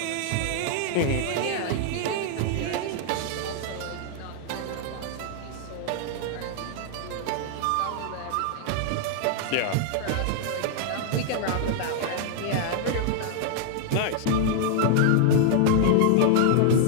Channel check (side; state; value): both; different; correlation 0.00